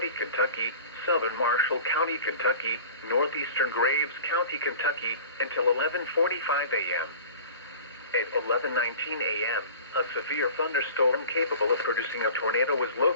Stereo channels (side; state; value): both; inverted; correlation -0.40